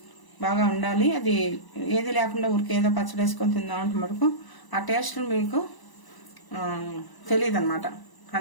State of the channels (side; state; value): right; late; 1.0 ms